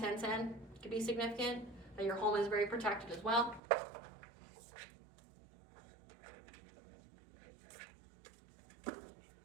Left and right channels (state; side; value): drops out; left; at 3.6 s